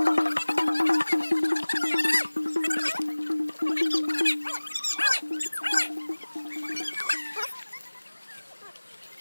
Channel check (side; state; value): both; inverted; correlation -1.00